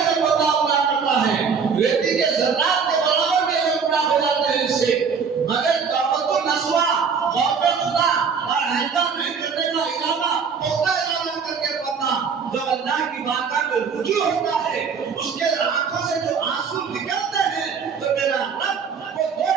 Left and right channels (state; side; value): quieter; left; 6.0 dB